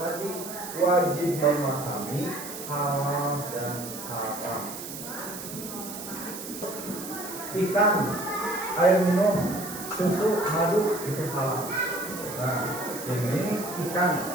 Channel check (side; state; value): right; noise; hiss, 10 dB below the sound